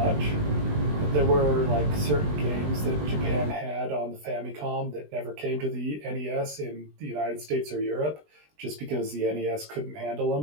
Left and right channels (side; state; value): left; late; 20 ms